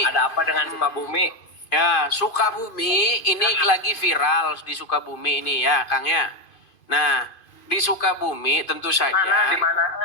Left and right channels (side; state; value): right; late; 2.5 ms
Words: Ada apa dengan Sukabumi? Ya, Sukabumi ini lagi viral di Sukabumi ini ya, Kang ya. Nah, di Sukabumi tentu saja. Mana? Di mana?